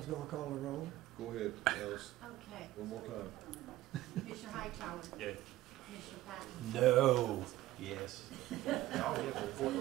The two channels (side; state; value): left; quieter; 15.8 dB